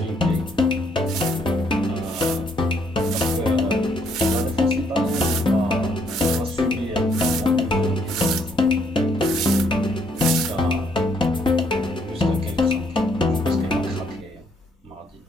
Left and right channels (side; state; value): both; normal; correlation 0.70